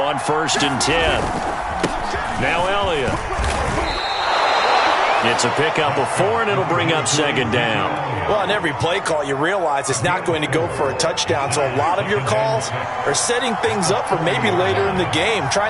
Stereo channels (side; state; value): both; identical; correlation 1.00